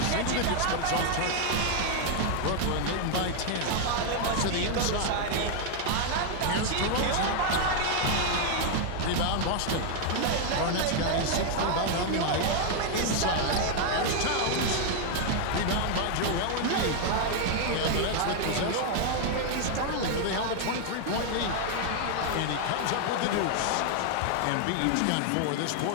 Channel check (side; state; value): both; different; correlation 0.00